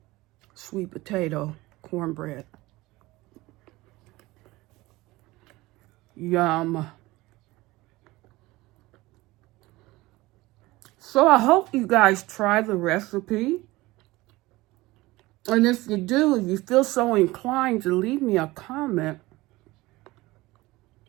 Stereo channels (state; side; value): quieter; left; 19.9 dB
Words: Sweet potato cornbread. Yum. So I hope you guys try the recipe. And if you do, if you feel so inclined to leave me a comment,